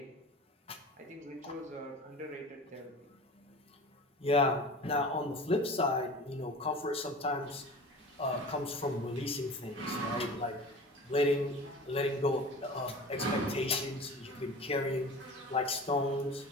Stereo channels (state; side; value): normal; both; correlation 0.37